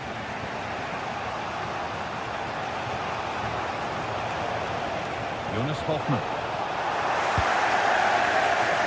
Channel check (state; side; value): identical; both; correlation 1.00